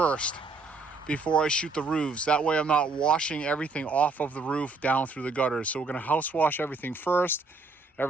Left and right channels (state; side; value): quieter; left; 3.8 dB